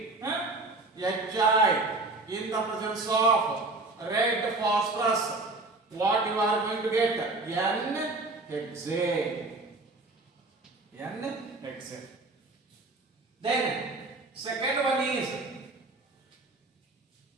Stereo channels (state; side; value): quieter; left; 3.2 dB